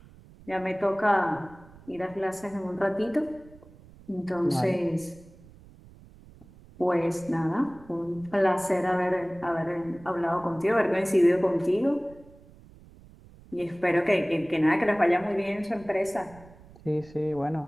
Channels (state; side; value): noise; right; rumble, 23 dB below the sound